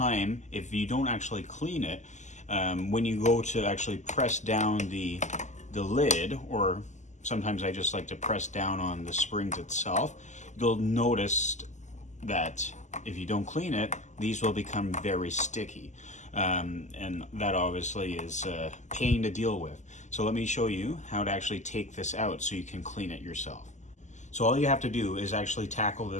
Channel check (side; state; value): right; late; 0.34 ms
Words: if you don't actually clean it, when you go to actually press down the lid, or sometimes I just like to press down on the springs itself, you'll notice that if you don't clean it, these will become very sticky. And that obviously is a pain to deal with. So let me show you how to actually take this out so you can clean it yourself. So all you have to do is actually tackle